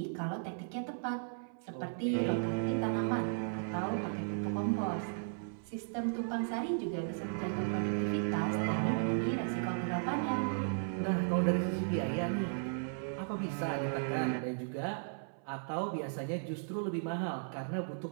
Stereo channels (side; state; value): left; silent; 54 dB below the other